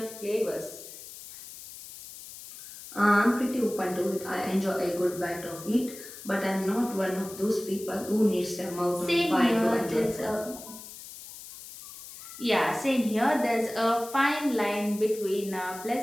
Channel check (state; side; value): noise; left; hiss, 14 dB below the sound